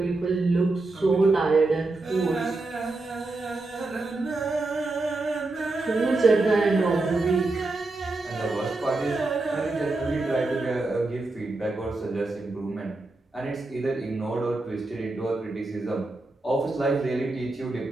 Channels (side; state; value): left; quieter; 3.1 dB